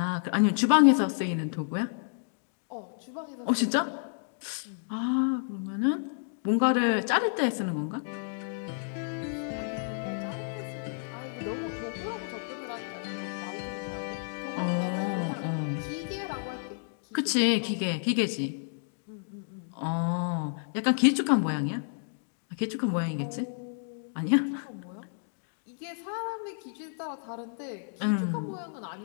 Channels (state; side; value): silent; right; digital silence